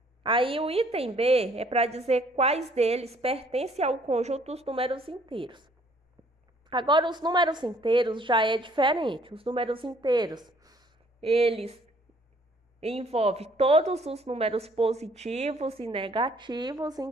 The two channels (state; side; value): normal; both; correlation 0.61